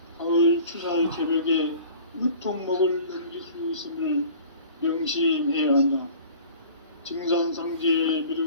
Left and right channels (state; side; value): inverted; both; correlation -0.45